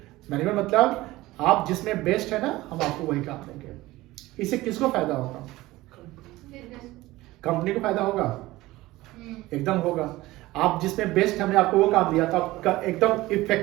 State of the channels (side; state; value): left; quieter; 18.3 dB